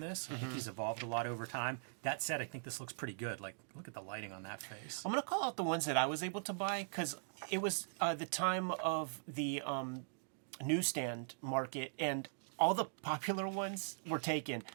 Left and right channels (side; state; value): left; silent; digital silence